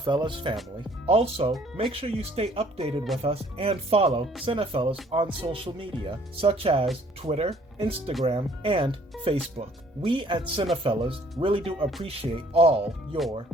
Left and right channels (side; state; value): both; normal; correlation 0.59